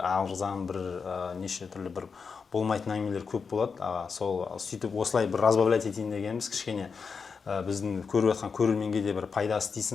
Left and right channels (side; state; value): right; quieter; 5.5 dB